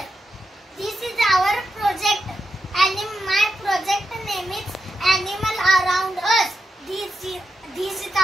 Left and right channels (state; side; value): normal; both; correlation 0.87